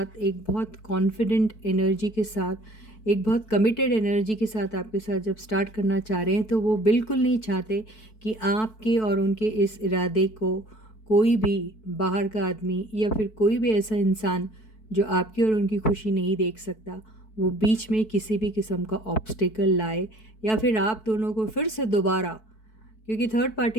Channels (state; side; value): late; right; 4.6 ms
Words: एक बहुत कॉन्फिडेंट एनर्जी के साथ, एक बहुत कमिटेड एनर्जी के साथ आपके साथ जब स्टार्ट करना चाह रहे हैं, तो वो बिल्कुल नहीं चाहते कि आपके और उनके इस इरादे को कोई भी बाहर का आदमी या फिर कोई भी ऐसा इंसान जो आपकी और उनकी खुशी नहीं देख सकता, वो बीच में किसी भी किस्म का ऑब्स्टिकल लाए, या फिर आप दोनों को फिर से दोबारा, क्योंकि थर्ड